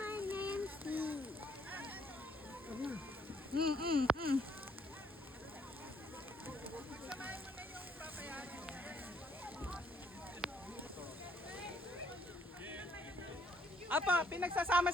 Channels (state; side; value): normal; both; correlation 0.68